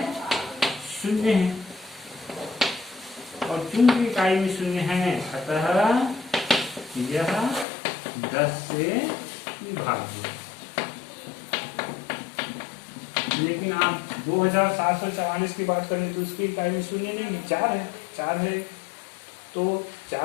और चूंकि इकाई में शून्य है अतः यह 10 से विभाज्य। लेकिन आप 2744 की बात करें तो उसकी इकाई में शून्य नहीं है, 4 है, तो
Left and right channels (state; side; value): drops out; right; at 7.7 s